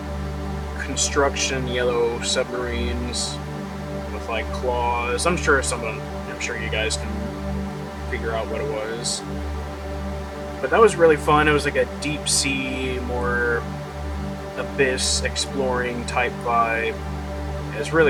construction, yellow submarines with like claws. I'm sure you guys can figure out what it was. But that was really fun. It was like a deep sea, more abyss exploring type vibe. It was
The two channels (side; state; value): both; identical; correlation 1.00